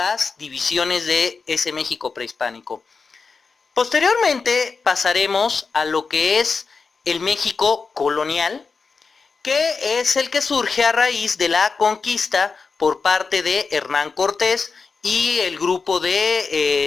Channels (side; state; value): right; quieter; 4.8 dB